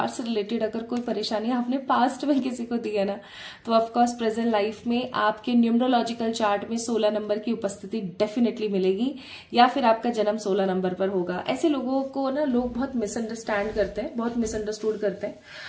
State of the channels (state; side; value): identical; both; correlation 1.00